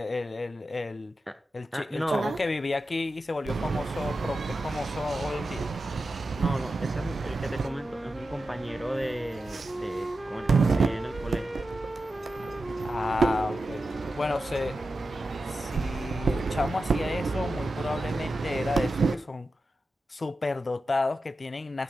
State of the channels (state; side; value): normal; both; correlation 0.91